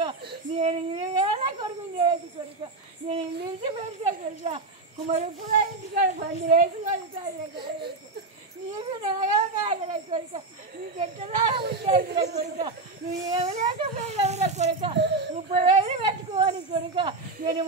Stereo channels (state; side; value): quieter; left; 3.5 dB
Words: నేను కొడుకు చేయదు కొడుక నేను ఇంటి పెడతా కొడుక కుమరపుర ఇంటికాడ బండి వేసుకోవాలి నీకు న్యాయం కాగల కొడుక నీకు ఎట్లా ఉండేదిరా కొడుక నువ్వు ఏమలేకపోయినవురా కొడుక 30,000 పెట్టుకోని కొడుక నేను